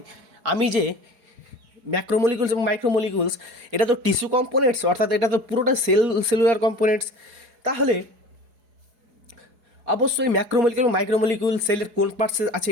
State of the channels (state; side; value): late; left; 4.8 ms